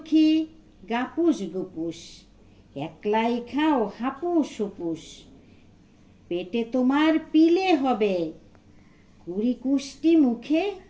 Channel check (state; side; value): identical; both; correlation 1.00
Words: গাপুস গুপুস, একলাই খাও হাপুস হুপুস, পেটে তোমার পিলে হবে, কুড়ি কুষ্টি মুখে,